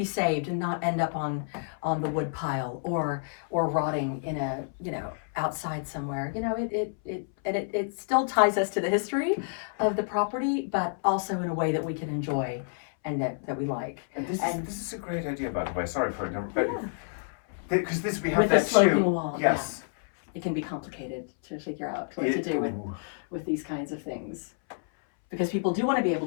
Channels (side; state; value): right; silent; 59 dB below the other